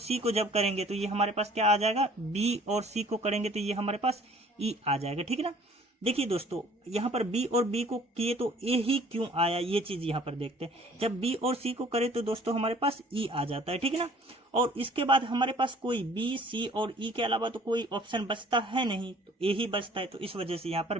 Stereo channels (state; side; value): normal; both; correlation 0.54